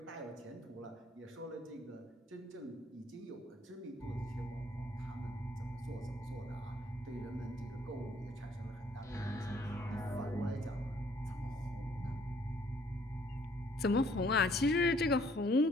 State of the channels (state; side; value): normal; both; correlation 0.63